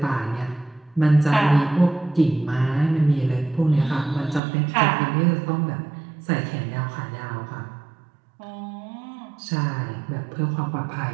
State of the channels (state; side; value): drops out; left; at 4.4 s